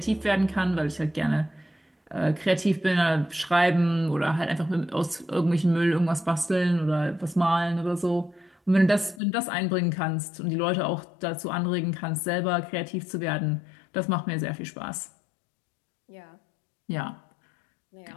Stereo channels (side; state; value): right; drops out; at 9.2 s